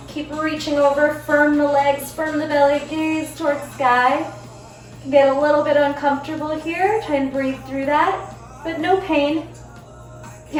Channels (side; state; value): both; identical; correlation 1.00